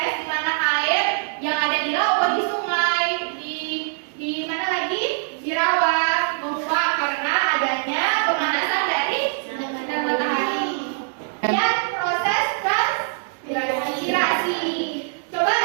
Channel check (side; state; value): left; silent; 64 dB below the other